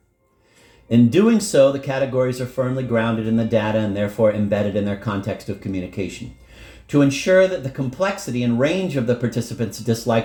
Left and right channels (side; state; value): both; identical; correlation 1.00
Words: In doing so, the categories are firmly grounded in the data and therefore embedded in their context of communication. To ensure that the complexity and range of the participants'